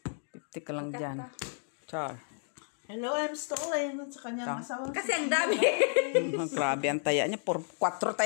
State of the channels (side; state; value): right; silent; 57 dB below the other